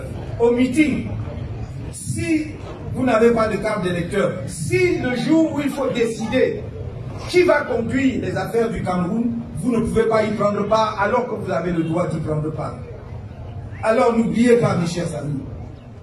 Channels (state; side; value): identical; both; correlation 1.00